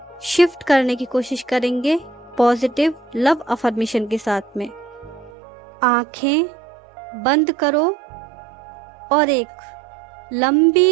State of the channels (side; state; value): left; drops out; at 5.3 s